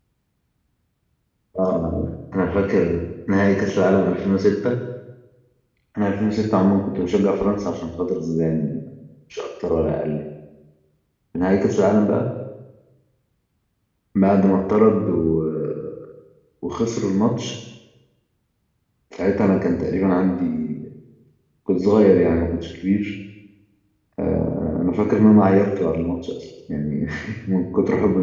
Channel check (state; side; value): identical; both; correlation 1.00